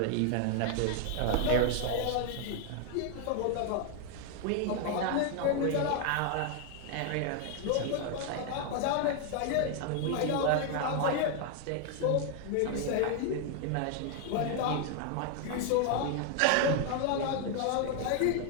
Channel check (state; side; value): different; both; correlation 0.00